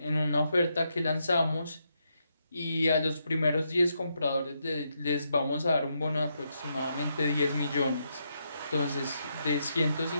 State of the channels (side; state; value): both; inverted; correlation -0.81